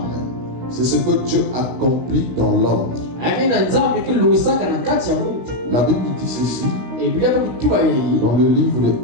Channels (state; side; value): late; left; 16 ms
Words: C'est ce que Dieu accomplit dans l'homme. La Bible dit ceci dans le livre de